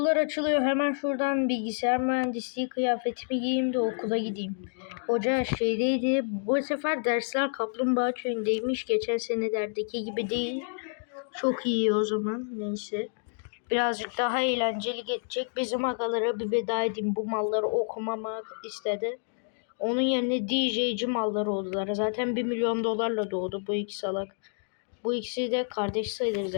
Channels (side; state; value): right; silent; digital silence